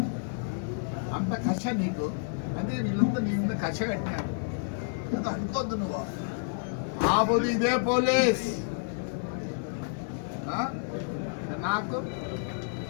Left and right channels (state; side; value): silent; right; digital silence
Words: అంత కష నీకు. అదే వీళ్ళంతా నీ మీద కష కట్టినారు. అనుకోద్దు నువ్వు. ఆ పోదు ఇదే పోలీస్ నాకు